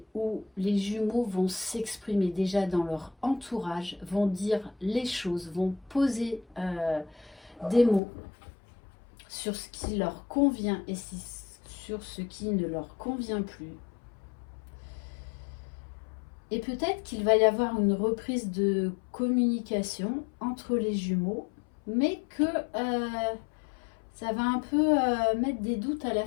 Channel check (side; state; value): right; drops out; at 8.0 s